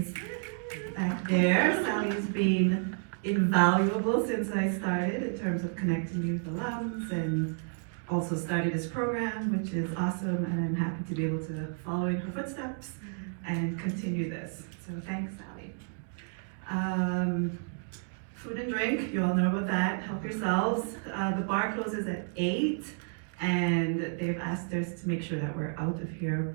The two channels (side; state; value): left; silent; 57 dB below the other